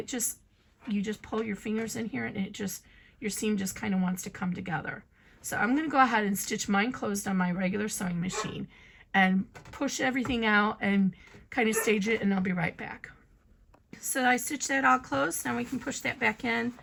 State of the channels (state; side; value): identical; both; correlation 1.00